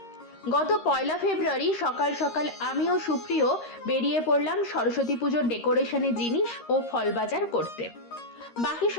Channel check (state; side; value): late; right; 13 ms